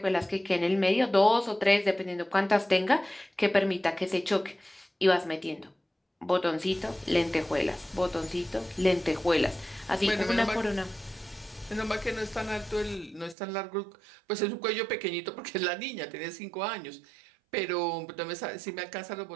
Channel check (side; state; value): left; drops out; at 13.4 s